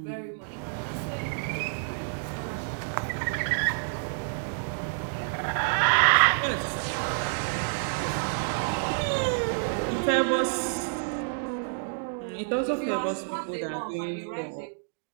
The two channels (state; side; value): silent; left; digital silence